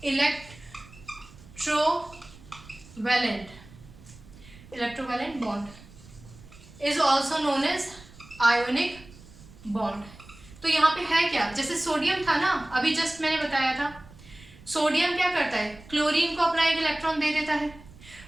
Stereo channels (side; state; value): right; noise; rumble, 21 dB below the sound